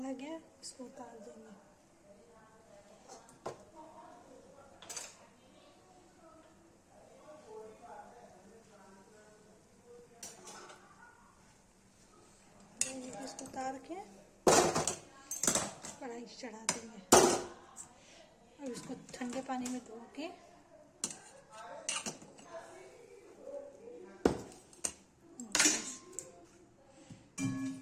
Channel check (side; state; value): both; identical; correlation 1.00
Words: गया, इसको उतार देंगे। इसको उतार के कढ़ाई चढ़ा देंगे और इसको ठंडे पानी में धो के